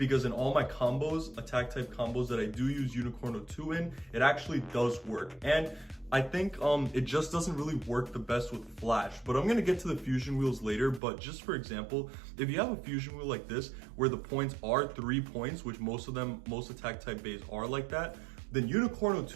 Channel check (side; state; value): left; drops out; at 11.0 s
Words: in all my combos, attack type combos that I do use Unicorno 2 in, it actually does work. And I think it just doesn't really work the best with Flash. But I'm gonna get to the fusion wheels later. But just for example, if you have a fusion wheel like this, where the points are 3 points, which most attack type bays are like that, then Unicorno